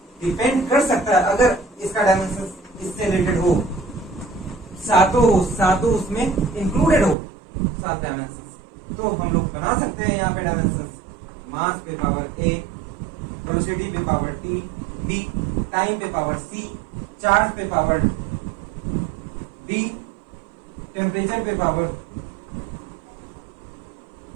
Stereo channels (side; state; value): left; drops out; at 7.2 s